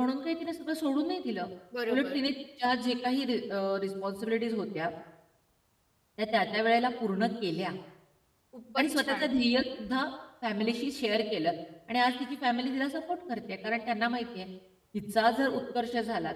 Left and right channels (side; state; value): both; identical; correlation 1.00